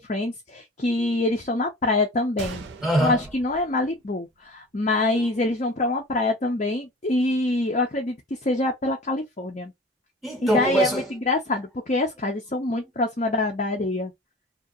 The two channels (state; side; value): normal; both; correlation 0.40